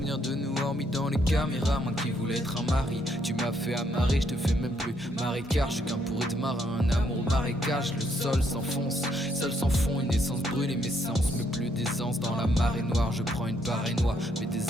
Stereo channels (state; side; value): normal; both; correlation 0.73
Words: de nous hormis dans les caméras. Moi qui voulais être un mari, tu m'as fait amarrer, je te fais même plus marécage. Je suis qu'un pourri de marin, un amour au marécage. Le sol s'enfonce, seul sans fond, une essence brûle et mes sens. Mais plus d'essence dans la marée noire, je prends une barre noire. Mes